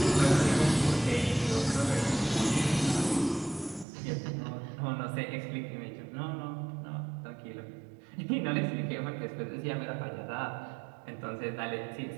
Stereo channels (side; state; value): left; drops out; at 3.9 s